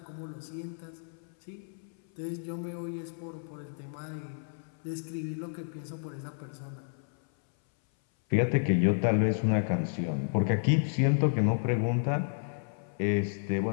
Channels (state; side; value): silent; right; 57 dB below the other